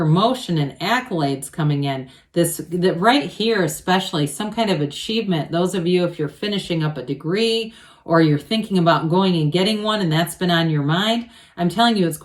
and accolades coming in. That right here, especially some kind of achievement. Those of you, if you're finishing up a degree or you're thinking about going and getting one and that's been on your mind, I'm telling you, it's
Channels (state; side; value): identical; both; correlation 1.00